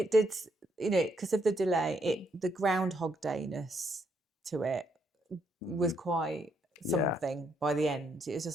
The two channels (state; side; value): normal; both; correlation 0.74